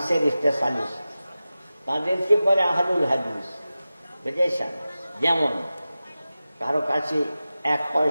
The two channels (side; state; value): both; inverted; correlation -0.95